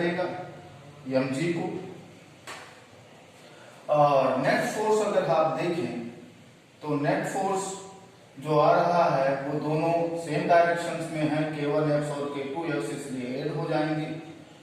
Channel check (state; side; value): identical; both; correlation 1.00